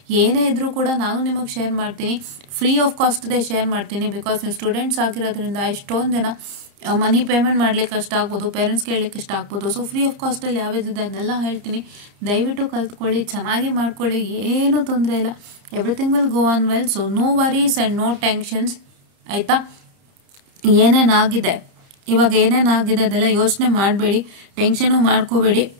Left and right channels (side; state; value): left; late; 29 ms